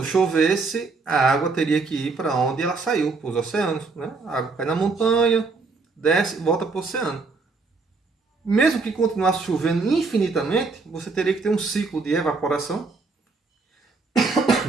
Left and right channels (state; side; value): quieter; left; 4.1 dB